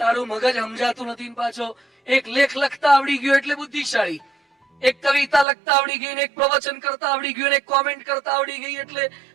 તારું મગજ સમજાતું નથી. પાછો એક લેખ લખતા આવડી ગયો એટલે બુદ્ધિશાળી, એક કવિતા લખતા આવડી ગઈ, એક પ્રવચન કરતા આવડી ગયું, એક કોમેન્ટ કરતા આવડી ગઈ એટલે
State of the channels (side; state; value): left; drops out; at 5.5 s